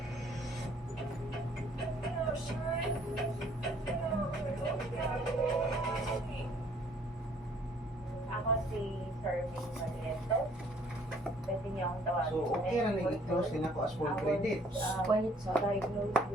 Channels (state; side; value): normal; both; correlation 0.60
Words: si Serving Mariento. Pwede niyo akong tawagin. So, okay ra na i-close din ako as full credit. When it's diagnosed